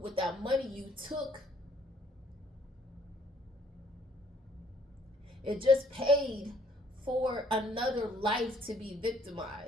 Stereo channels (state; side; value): normal; both; correlation 0.63